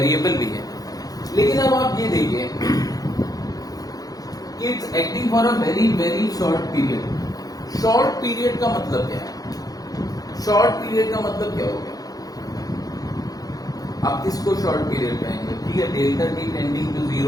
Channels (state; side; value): late; right; 0.18 ms